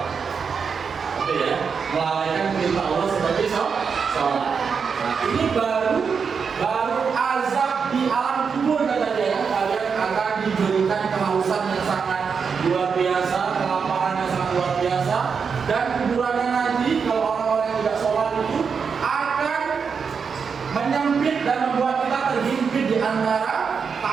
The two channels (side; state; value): left; quieter; 6.0 dB